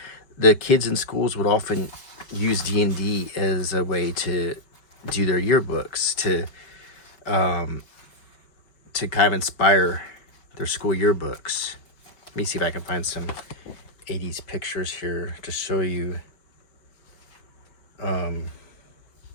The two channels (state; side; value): late; right; 5.1 ms